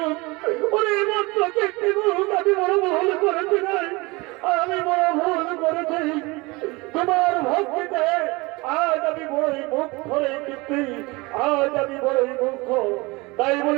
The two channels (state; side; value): quieter; left; 24.4 dB